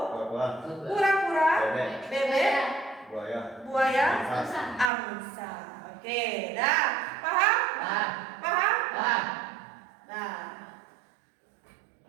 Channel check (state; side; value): drops out; left; at 4.9 s